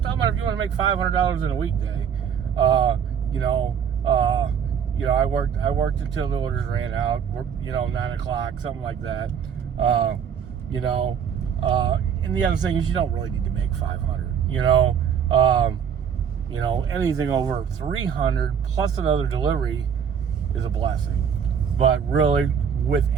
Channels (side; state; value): left; quieter; 7.7 dB